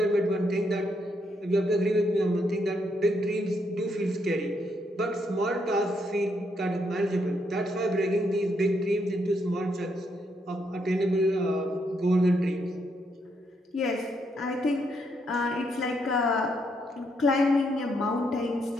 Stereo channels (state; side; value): normal; both; correlation 0.76